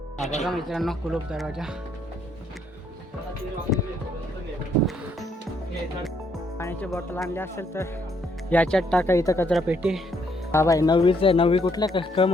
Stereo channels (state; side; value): normal; both; correlation 0.71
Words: मित्रांनो कुलूप दरवाजा. पाण्याची बॉटल आणली असेल तर याच्यात टाका. इथं कचरा पेटी. हा बाई 9वीच आहे. 9वी कुठल्या क